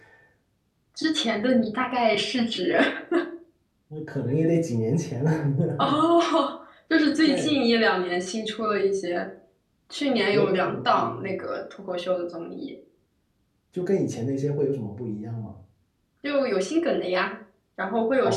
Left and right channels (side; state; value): both; identical; correlation 1.00